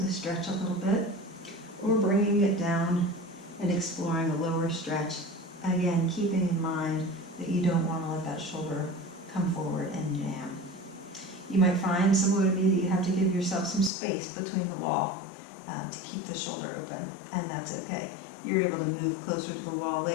stretch a little bit, or bringing it down and exploring a lower stretch. Again, keeping in mind that you don't want to let that shoulder come forward and jam. You might find, similar to me, that you have to give yourself some space between the wall to keep the shoulder open, and that's okay. You're able to move closer to the wall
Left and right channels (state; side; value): drops out; right; at 13.9 s